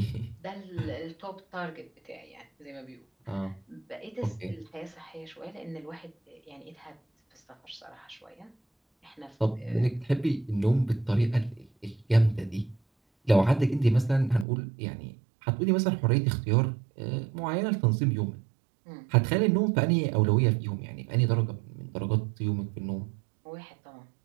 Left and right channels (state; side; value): drops out; left; at 14.5 s